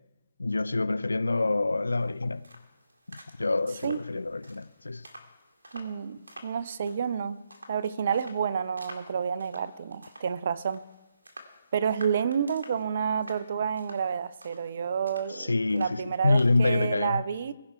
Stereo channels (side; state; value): both; inverted; correlation -0.83